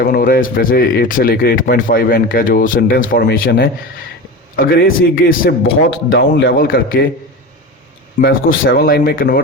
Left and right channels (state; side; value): normal; both; correlation 0.27